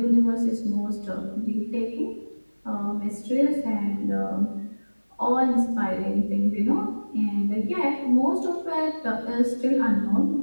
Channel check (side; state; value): both; inverted; correlation -1.00